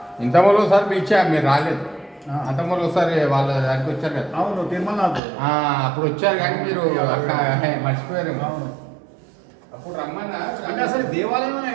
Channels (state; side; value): drops out; left; at 5.2 s